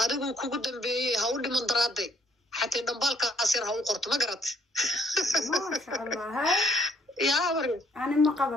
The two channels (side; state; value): both; normal; correlation 0.64